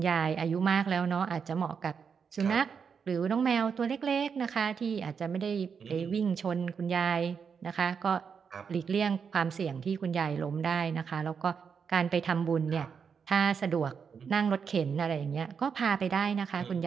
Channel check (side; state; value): left; quieter; 6.4 dB